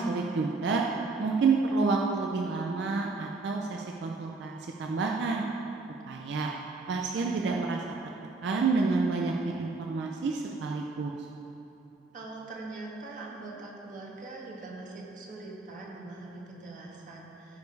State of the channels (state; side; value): quieter; left; 3.7 dB